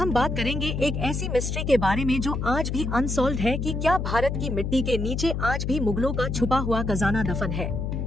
बात करेंगे एक ऐसी मिस्ट्री के बारे में जो आज भी अनसॉल्व्ड है कि क्या भारत की मिट्टी के नीचे आज भी मुगलों का छुपा हुआ खजाना दफन है।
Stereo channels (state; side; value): noise; left; hum, 2 dB below the sound